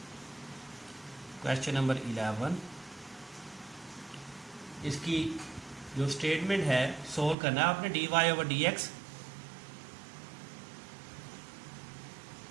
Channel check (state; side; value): drops out; left; at 7.4 s